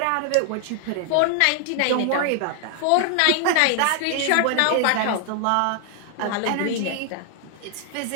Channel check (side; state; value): both; different; correlation 0.00